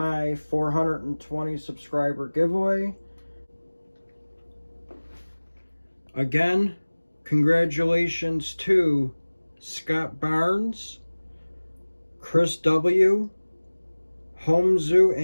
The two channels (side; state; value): both; inverted; correlation -1.00